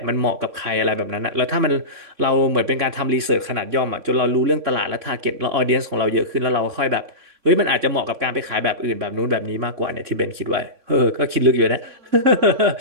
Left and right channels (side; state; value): left; late; 3.6 ms